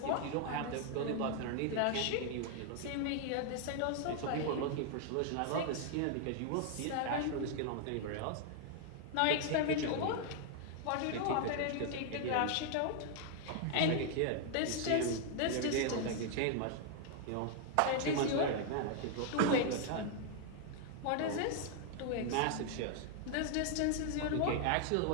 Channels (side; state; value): both; different; correlation 0.00